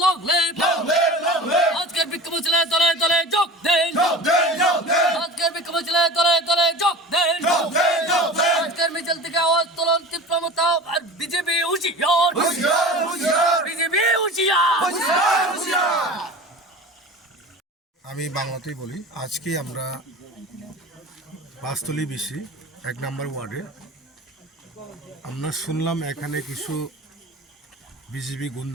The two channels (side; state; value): both; normal; correlation 0.35